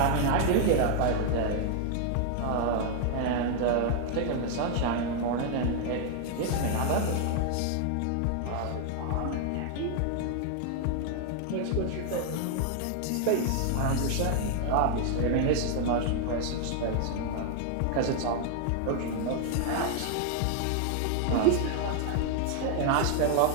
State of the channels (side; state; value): both; different; correlation 0.00